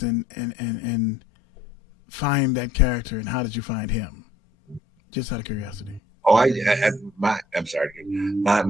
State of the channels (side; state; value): both; normal; correlation 0.61